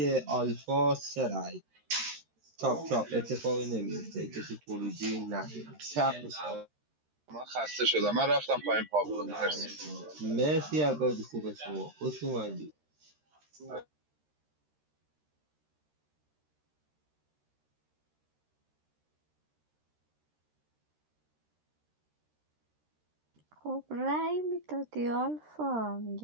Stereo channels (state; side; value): late; left; 13 ms